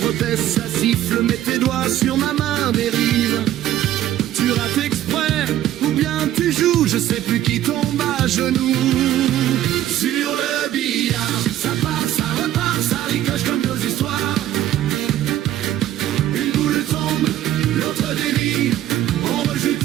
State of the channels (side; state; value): left; quieter; 12.8 dB